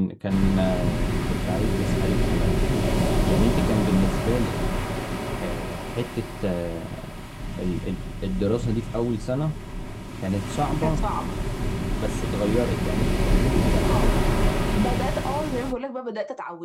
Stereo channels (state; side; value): identical; both; correlation 1.00